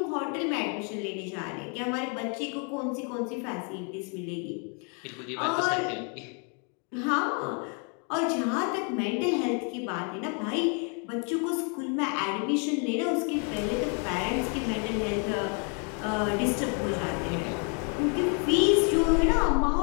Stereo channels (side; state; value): right; quieter; 38.0 dB